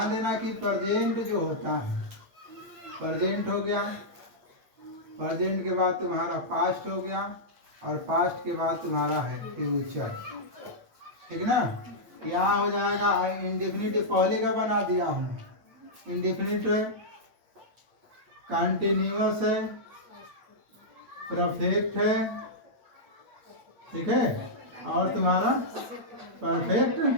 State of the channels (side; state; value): left; late; 8.7 ms